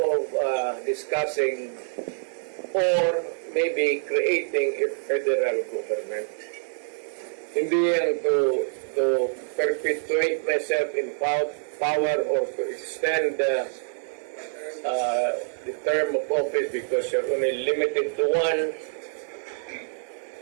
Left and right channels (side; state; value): left; silent; digital silence